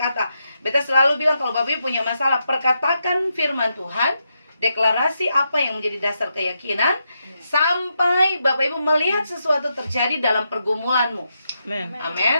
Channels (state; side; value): inverted; both; correlation -0.83